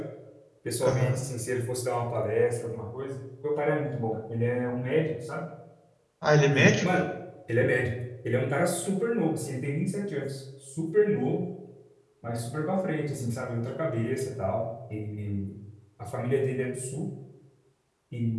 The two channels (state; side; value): identical; both; correlation 1.00